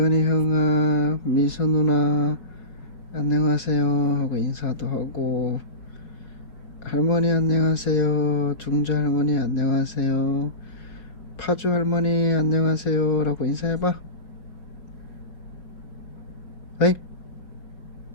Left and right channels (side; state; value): right; late; 4.9 ms